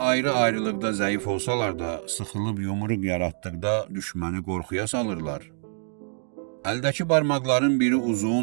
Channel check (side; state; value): left; silent; digital silence